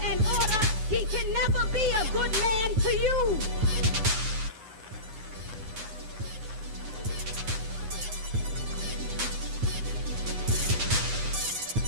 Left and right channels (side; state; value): left; late; 9.4 ms